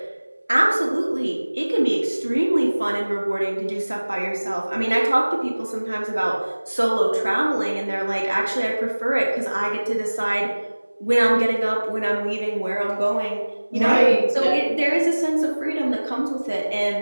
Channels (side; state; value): both; inverted; correlation -1.00